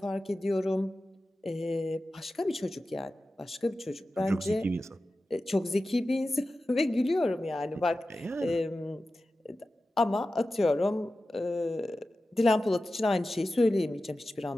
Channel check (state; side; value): normal; both; correlation 0.94